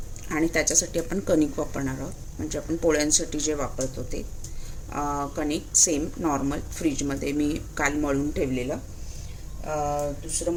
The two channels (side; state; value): both; identical; correlation 1.00